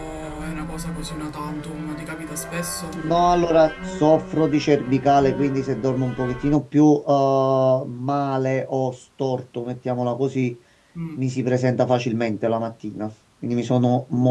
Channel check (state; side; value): identical; both; correlation 1.00